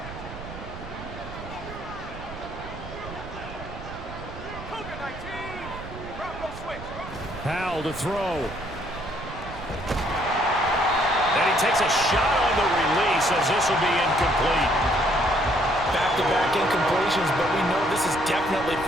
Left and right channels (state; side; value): noise; right; rumble, 12 dB below the sound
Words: Howell to throw. And he takes a shot on the release as this will be incomplete. Back-to-back incompletions, but we know this is definitely